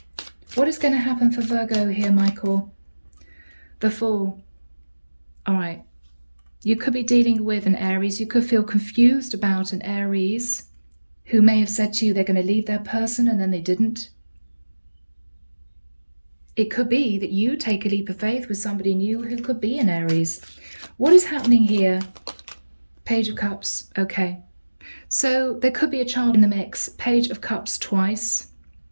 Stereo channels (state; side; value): inverted; both; correlation -1.00